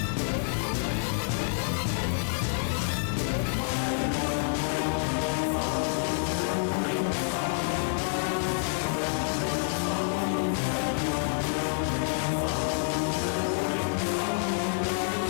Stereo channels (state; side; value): silent; right; 59 dB below the other